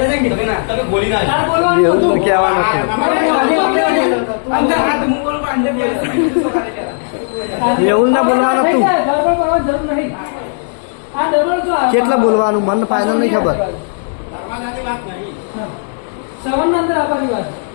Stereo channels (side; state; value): right; silent; digital silence